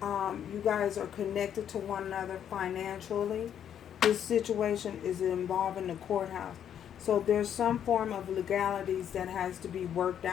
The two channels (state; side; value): quieter; right; 9.4 dB